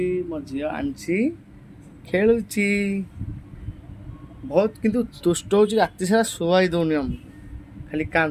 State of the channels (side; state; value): both; identical; correlation 1.00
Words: मो झी आंची खेलुची बहुत किंतु दुष्ट हो राति सारा शुआई दौनी आमको खाली